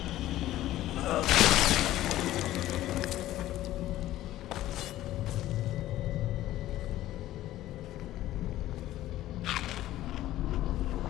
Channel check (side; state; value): right; quieter; 14.5 dB